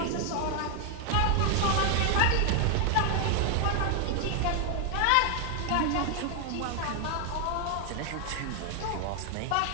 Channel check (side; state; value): both; different; correlation 0.00